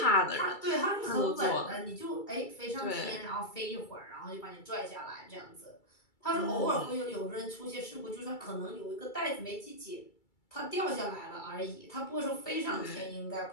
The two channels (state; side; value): late; right; 2.3 ms